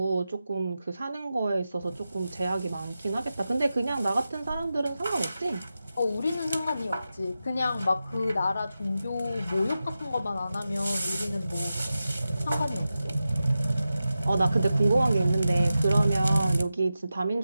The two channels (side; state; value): both; inverted; correlation -0.92